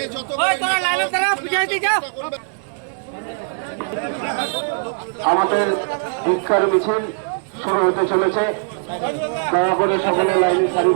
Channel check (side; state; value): left; silent; digital silence